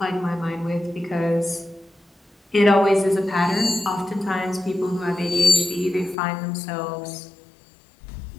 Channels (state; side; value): drops out; right; at 6.2 s